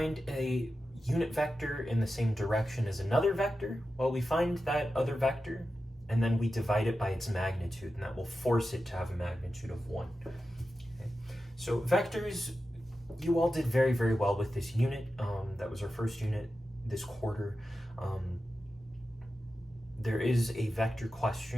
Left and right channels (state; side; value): normal; both; correlation 0.91